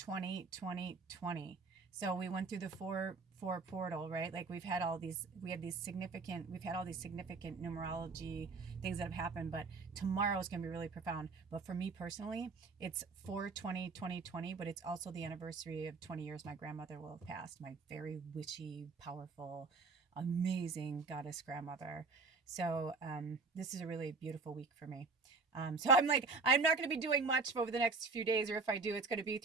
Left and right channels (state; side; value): quieter; left; 4.3 dB